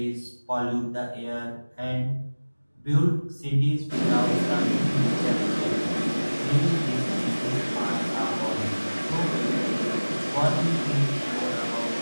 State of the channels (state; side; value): inverted; both; correlation -1.00